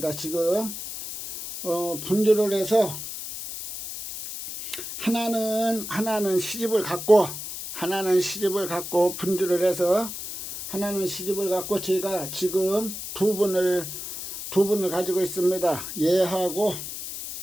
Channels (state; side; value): noise; left; hiss, 8 dB below the sound